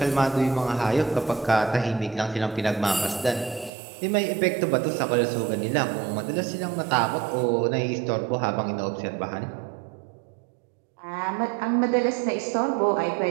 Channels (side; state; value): left; drops out; at 3.7 s